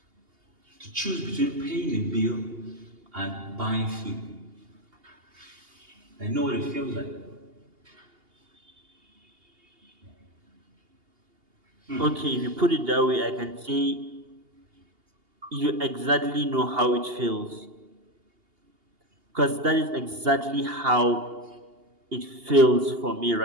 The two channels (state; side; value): late; left; 2.8 ms